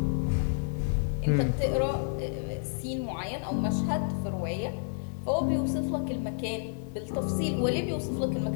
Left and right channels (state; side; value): silent; right; digital silence